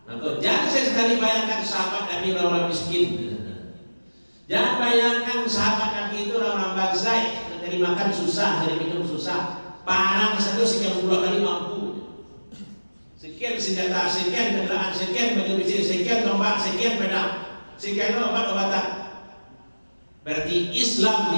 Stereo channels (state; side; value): inverted; both; correlation -1.00